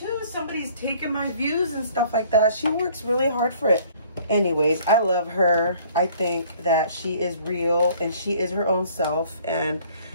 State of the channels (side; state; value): both; inverted; correlation -0.56